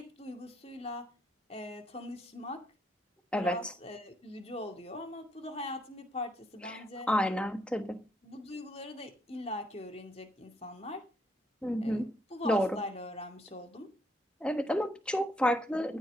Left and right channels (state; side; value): normal; both; correlation 0.73